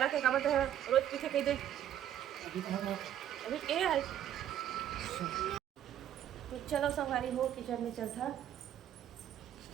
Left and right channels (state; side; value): quieter; left; 10.9 dB